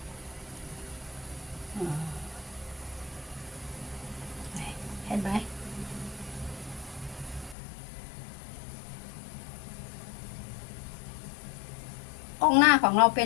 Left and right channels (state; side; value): drops out; right; at 7.6 s